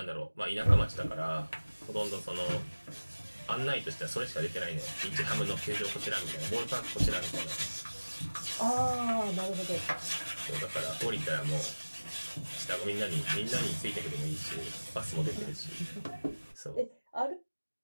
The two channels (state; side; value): inverted; both; correlation -1.00